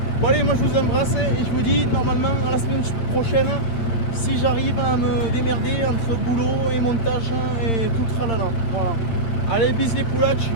Bon allez, moi je vous embrasse et je vous dis normalement à la semaine prochaine, si j'arrive à me démerder entre boulot et montage et tout le tralala. Voilà. Allez, bis les poulach,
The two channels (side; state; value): right; late; 9.0 ms